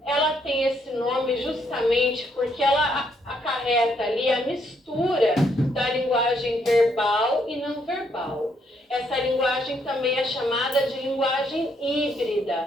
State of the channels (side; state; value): both; normal; correlation 0.73